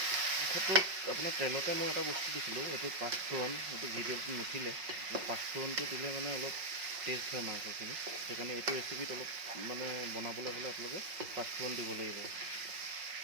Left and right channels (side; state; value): left; late; 5.5 ms